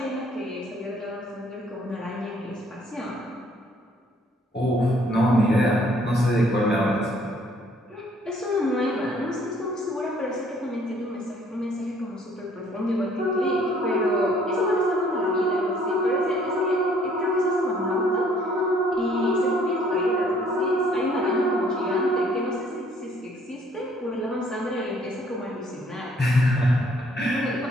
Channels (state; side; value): normal; both; correlation 0.61